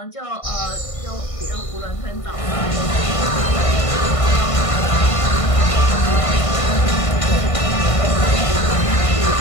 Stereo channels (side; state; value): right; late; 1.5 ms